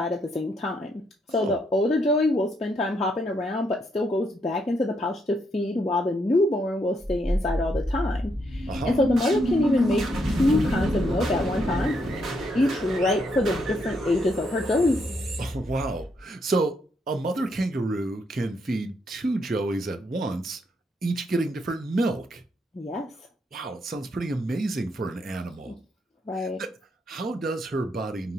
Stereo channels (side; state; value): both; normal; correlation 0.76